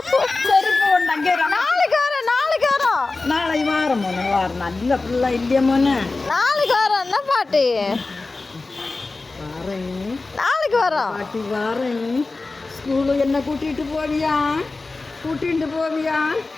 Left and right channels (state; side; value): quieter; right; 3.5 dB